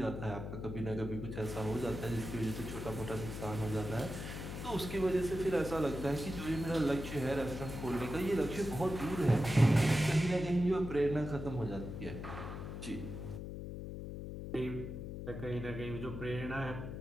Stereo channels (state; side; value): noise; left; hum, 7 dB below the sound